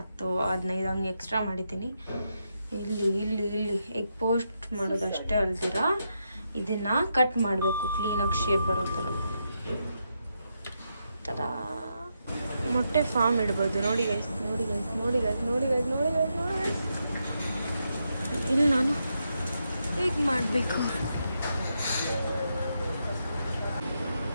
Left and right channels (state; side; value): inverted; both; correlation -0.83